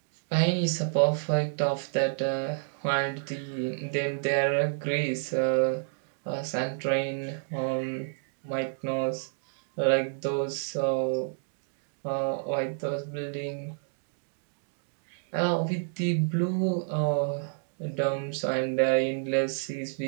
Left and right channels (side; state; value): left; silent; digital silence